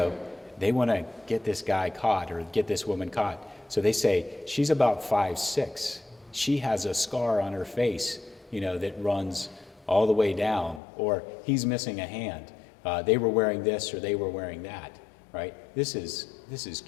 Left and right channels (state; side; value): drops out; right; at 10.8 s